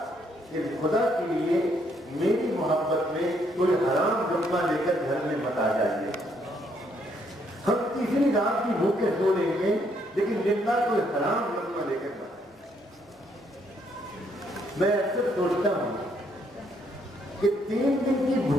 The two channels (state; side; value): normal; both; correlation 0.71